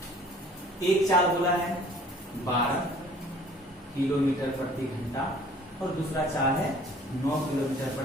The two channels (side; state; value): both; normal; correlation 0.52